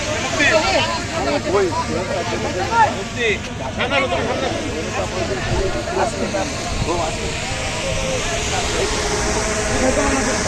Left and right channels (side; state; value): both; identical; correlation 1.00